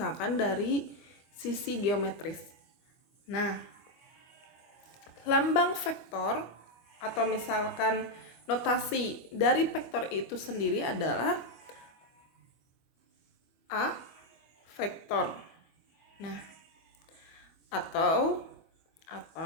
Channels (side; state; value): right; late; 25 ms